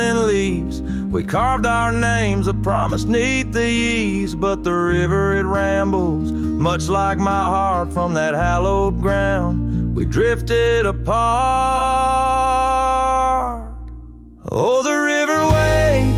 leaves. We carved our names, a promise neath the eaves. But the river, it rambles, much like my heart from that hallowed ground. We drifted apart. Oh, the river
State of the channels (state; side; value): identical; both; correlation 1.00